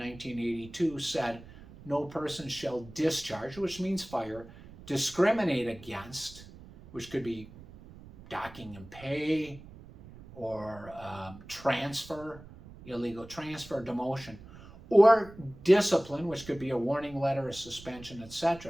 said no person shall discharge, which means fire, discriminate against, which could be docking and pay, or transfer, illegal transfer, demotion, or discipline, which could be a warning letter, a suspension,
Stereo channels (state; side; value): noise; right; rumble, 18 dB below the sound